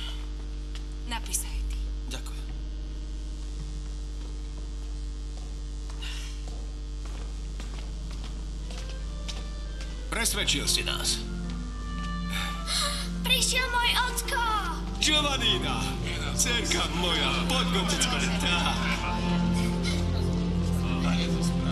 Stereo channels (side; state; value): both; identical; correlation 1.00